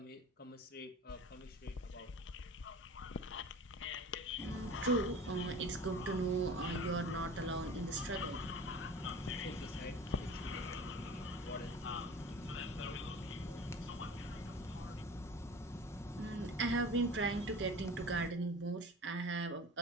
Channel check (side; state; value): both; normal; correlation 0.39